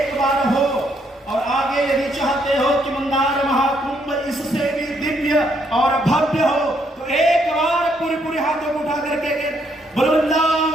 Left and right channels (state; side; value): normal; both; correlation 0.72